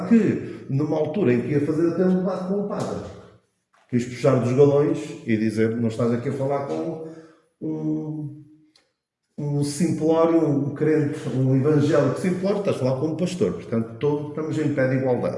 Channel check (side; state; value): both; identical; correlation 1.00